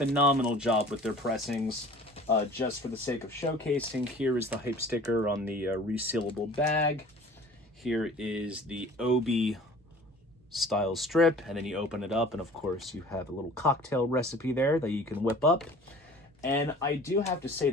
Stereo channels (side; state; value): both; normal; correlation 0.46